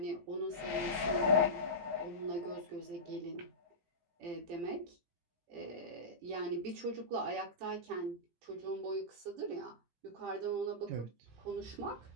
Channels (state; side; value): late; left; 17 ms